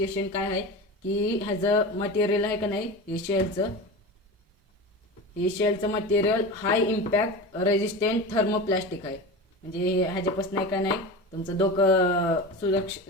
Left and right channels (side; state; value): both; normal; correlation 0.28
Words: काय आहे की ह्याचं मटेरियल आहे का नाही, हे शेलचं मटेरियल हाय इम्पॅक्ट रेजिस्टंट थर्मोप्लास्टिक आहे. म्हणजे ह्याच्यापासून आहे का नाही तुमचं डोकं